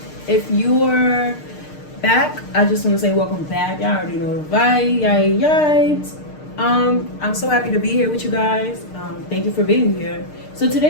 If you're back, I just want to say welcome back. Y'all already know the vibe. I'm so happy to be here with you guys. Thank you for being here. So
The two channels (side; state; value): right; late; 6.6 ms